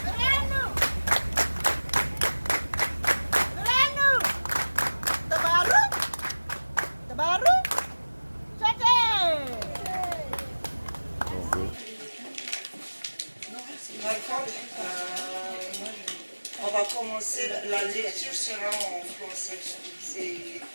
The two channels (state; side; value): inverted; both; correlation -1.00